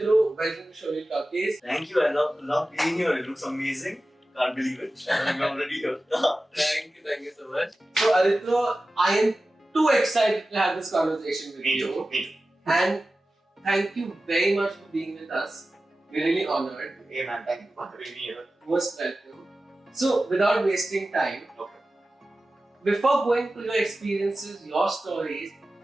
welcome to Show Reel Talkies. Thank you. I love being here. It looks amazing. Can't believe it. I'm already here. Thank you so much. So Aritro, I am too excited to have this conversation with you. Me too. And thank you very much for being with us. We're really honored. Hey man, thank you for having me here. Most welcome. So, without wasting time, Okay. before going to your experiences, your stories,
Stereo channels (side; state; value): both; normal; correlation 0.95